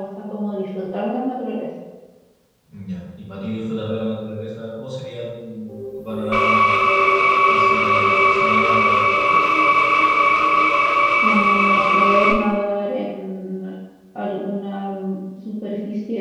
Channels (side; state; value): both; identical; correlation 1.00